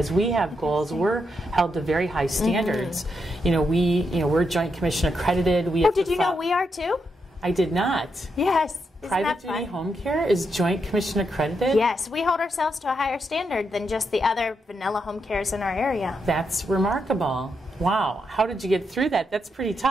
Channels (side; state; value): both; normal; correlation 0.82